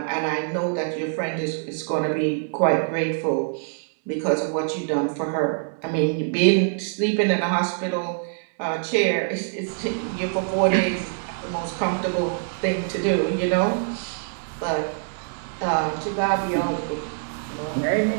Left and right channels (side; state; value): left; silent; digital silence